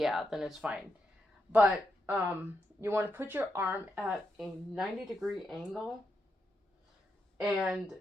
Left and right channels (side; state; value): both; normal; correlation 0.83